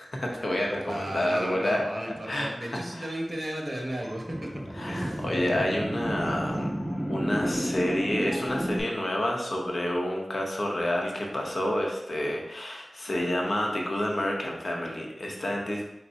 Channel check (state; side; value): normal; both; correlation 0.96